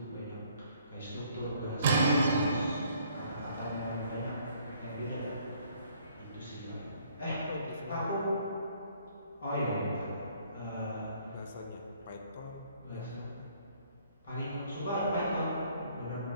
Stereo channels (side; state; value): both; inverted; correlation -0.62